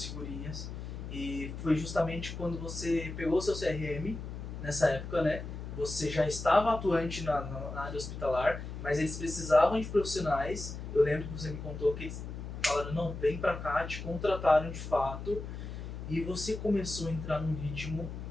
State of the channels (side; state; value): left; noise; hum, 8 dB below the sound